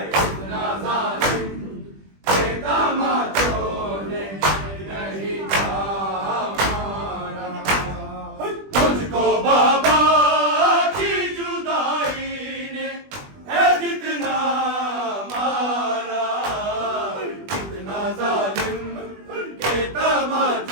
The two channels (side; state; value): left; late; 20 ms